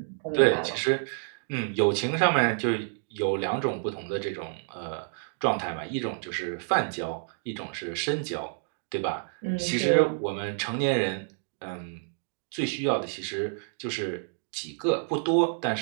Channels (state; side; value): silent; left; digital silence